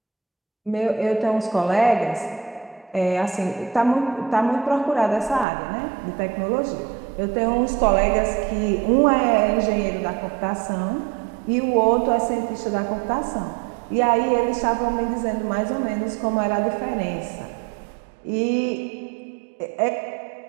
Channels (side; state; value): left; drops out; at 5.5 s